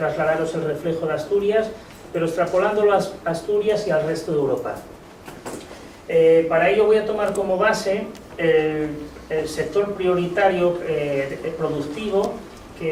el reflejo de Asturias, pero extrapolándolo a Asturias y al resto de Europa. Para ello voy a tomar como base el sector prioritario productivo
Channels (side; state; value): both; identical; correlation 1.00